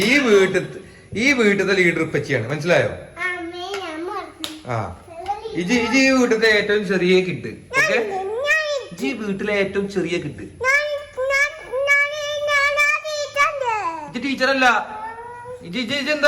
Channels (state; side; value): identical; both; correlation 1.00